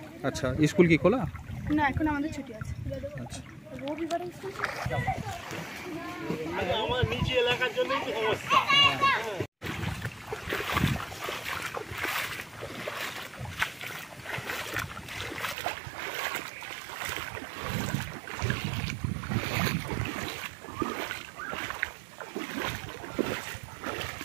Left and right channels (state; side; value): drops out; left; at 15.6 s